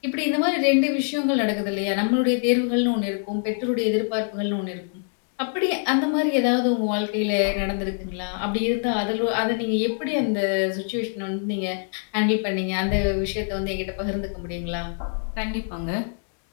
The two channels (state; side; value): silent; right; 61 dB below the other